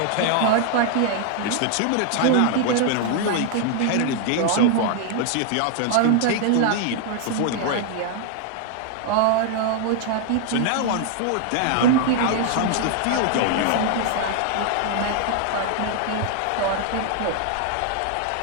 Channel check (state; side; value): different; both; correlation 0.00